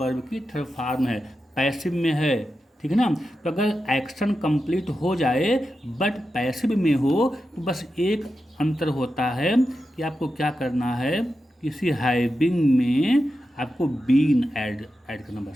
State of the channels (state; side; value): normal; both; correlation 0.90